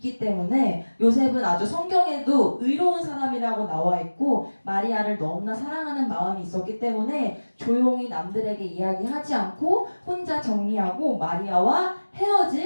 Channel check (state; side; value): inverted; both; correlation -1.00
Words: 때문에, 요셉은 아주 성경에도 의로운 사람이라고 나와 있고 마리아를 너무나 사랑하는 마음이 있었기 때문에 조용히 남들에게 이야기하지 않고 혼자 정리하고 마리아와